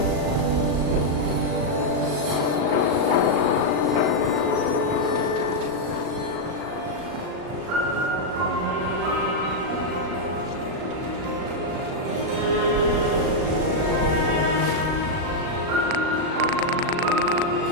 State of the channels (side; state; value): left; late; 37 ms